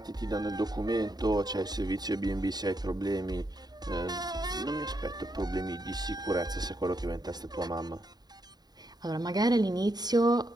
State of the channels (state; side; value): late; left; 0.20 ms